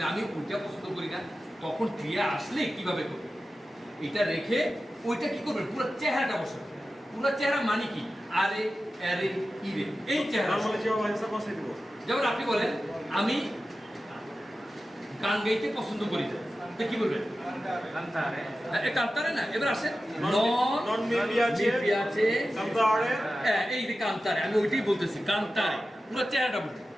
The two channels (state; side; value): normal; both; correlation 0.94